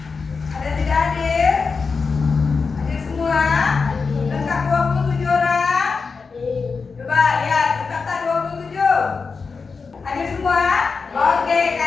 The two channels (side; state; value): right; quieter; 4.8 dB